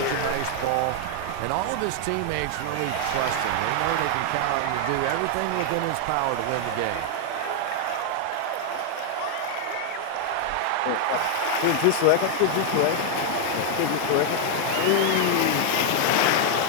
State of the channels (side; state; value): both; different; correlation 0.00